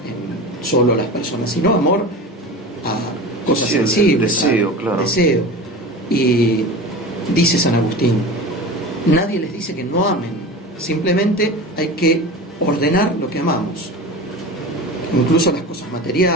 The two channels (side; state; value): both; normal; correlation 0.31